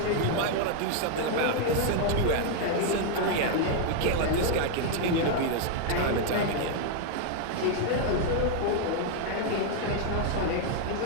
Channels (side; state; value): both; different; correlation 0.00